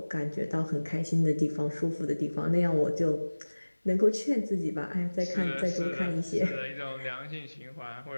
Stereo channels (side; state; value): both; inverted; correlation -1.00